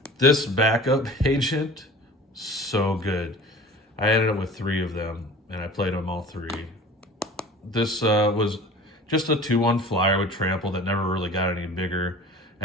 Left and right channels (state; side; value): normal; both; correlation 0.41